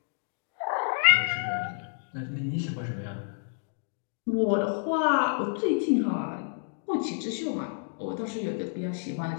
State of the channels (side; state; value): right; silent; digital silence